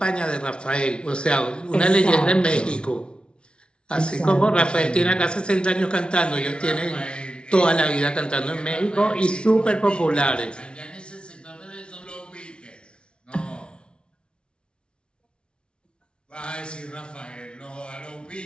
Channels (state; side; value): late; right; 0.057 ms